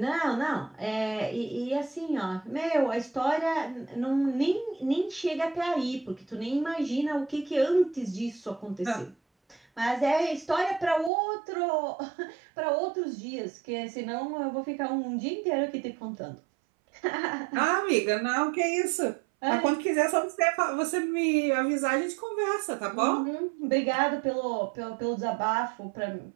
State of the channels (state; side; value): drops out; left; at 11.1 s